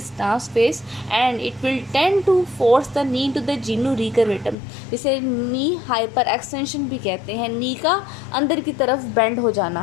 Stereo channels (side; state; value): right; drops out; at 4.5 s